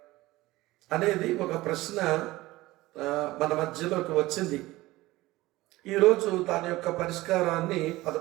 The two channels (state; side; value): quieter; left; 18.6 dB